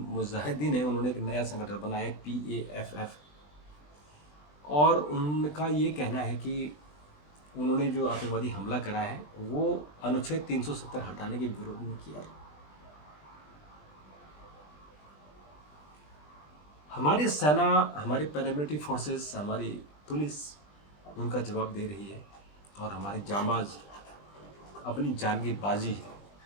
है, उन्होंने एक नया संगठन बनाया है PAFF। और उनका ये कहना है कि उन्होंने जो आतंकवादी हमला करा है वो अनुच्छेद 370 हटाने के विरोध में किया है। हमारी सेना, हमारी पैरामिलिट्री फोर्सेस, हमारी पुलिस उनका जवाब दे रही है और हमारे जांबाज अपनी जान की बाजी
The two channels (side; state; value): right; late; 20 ms